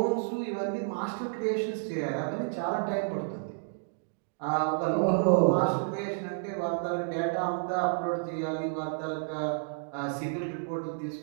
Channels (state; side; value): silent; left; digital silence